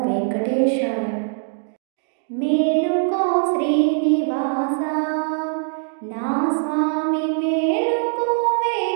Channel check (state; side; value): silent; left; digital silence